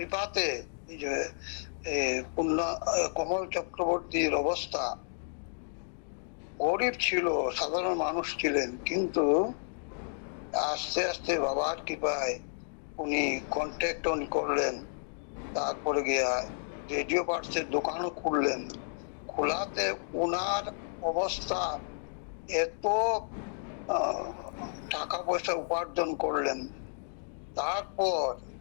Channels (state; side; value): silent; right; digital silence